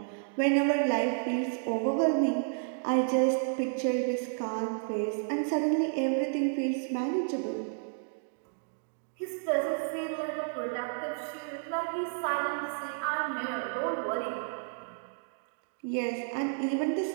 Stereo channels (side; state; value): left; silent; digital silence